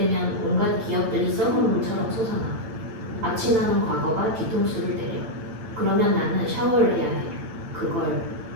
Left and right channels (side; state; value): left; late; 8.9 ms